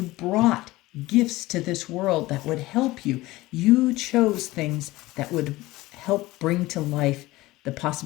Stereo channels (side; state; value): right; quieter; 18.8 dB